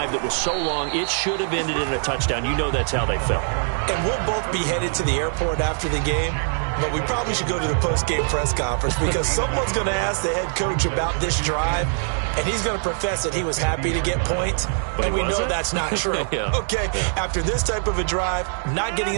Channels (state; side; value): silent; left; 64 dB below the other